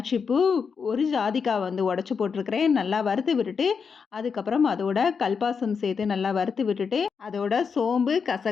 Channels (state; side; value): quieter; right; 5.9 dB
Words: பூ, ஒரு ஜாதிக்காய் உடைச்சு போட்டிருக்கிறேன். நல்லா வறுத்து விட்டுட்டு, அதுக்கப்புறம் அதோட கல்பாசம் சேர்த்து நல்லா வறுத்து விட்டுட்டு, அதோட சோம்பு,